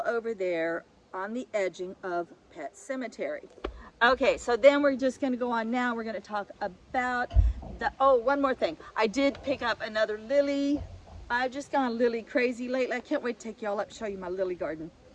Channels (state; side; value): identical; both; correlation 1.00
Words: over there on the edging of Pet Cemetery. Okay, so then we're just going to go on now. We're going to talk about the, oh, one more thing. I did pick up another lily. I've just gone lily crazy lately. I can't wait to take y'all up, show you my lily garden.